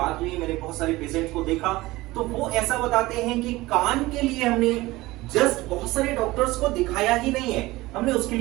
हुई, मैंने बहुत सारे पेशेंट्स को देखा तो वो ऐसा बताते हैं कि कान के लिए हमने जस्ट बहुत सारे डॉक्टर्स को दिखाया ही नहीं है, हमने उसके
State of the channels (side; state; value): left; quieter; 19.3 dB